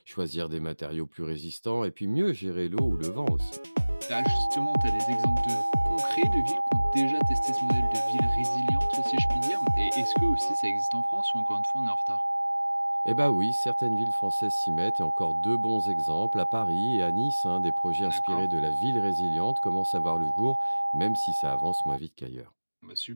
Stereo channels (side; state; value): both; inverted; correlation -1.00